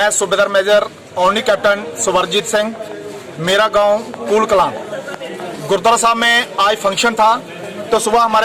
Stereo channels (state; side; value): identical; both; correlation 1.00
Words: सूबेदार मेजर ओनली कैप्टन सुवरजीत सिंह, मेरा गांव कूल कलां। गुरुद्वारा साहब में आज फंक्शन था, तो सुबह